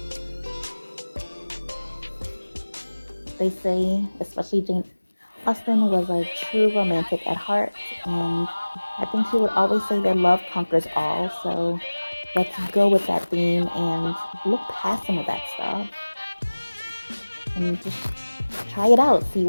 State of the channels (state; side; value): inverted; both; correlation -1.00